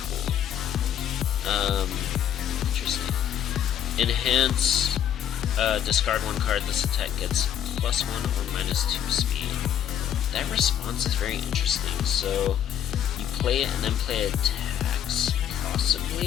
pool. Interesting. Enhance, discard 1 card. This attack gets +1 or -2 speed. That response is very interesting. So you play it and then play attacks,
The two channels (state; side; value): quieter; right; 9.9 dB